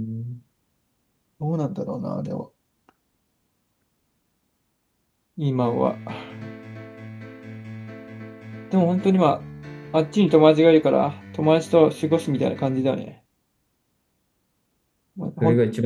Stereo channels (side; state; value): both; identical; correlation 1.00